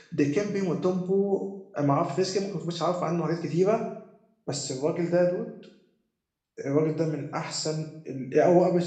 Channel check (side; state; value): both; identical; correlation 1.00